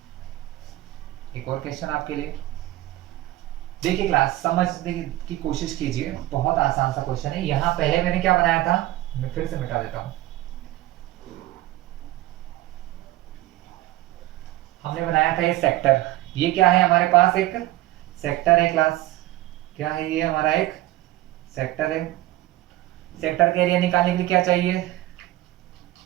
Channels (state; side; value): quieter; left; 16.4 dB